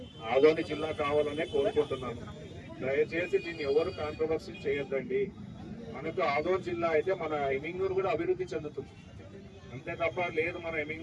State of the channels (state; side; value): identical; both; correlation 1.00